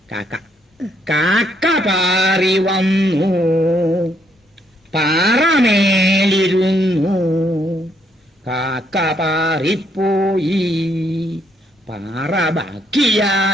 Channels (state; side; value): normal; both; correlation 0.72